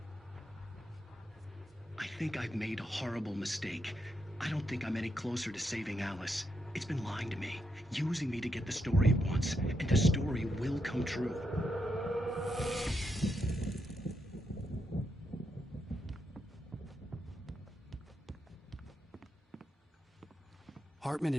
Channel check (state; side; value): normal; both; correlation 0.81